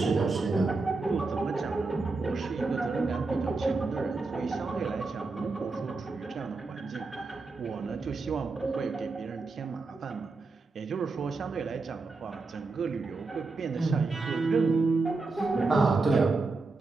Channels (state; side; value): quieter; left; 3.8 dB